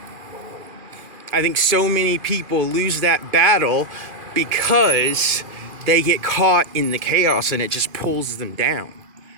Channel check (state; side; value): late; left; 2.4 ms